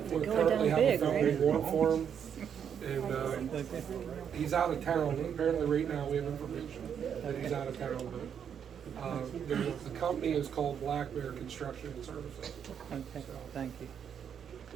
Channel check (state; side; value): quieter; left; 8.1 dB